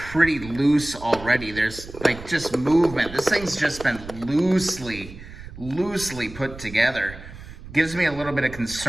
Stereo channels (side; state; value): right; noise; rumble, 15 dB below the sound